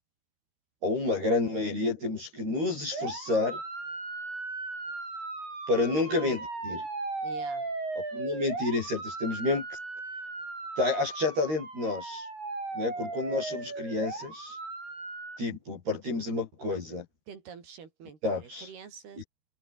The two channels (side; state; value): left; late; 13 ms